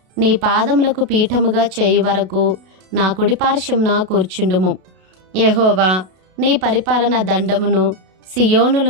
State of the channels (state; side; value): late; left; 32 ms